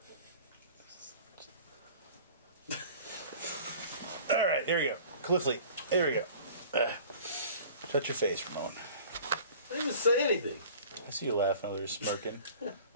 All right, there we go. Cliffley, there we go. Shut your face, Ramon. I didn't even say anything. I see you laughing over there, smirking. Your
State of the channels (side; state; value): both; inverted; correlation -0.45